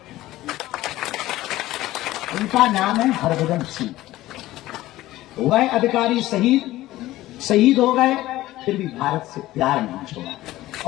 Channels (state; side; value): quieter; right; 16.2 dB